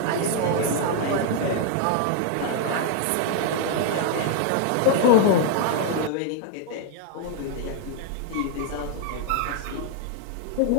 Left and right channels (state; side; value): different; both; correlation 0.00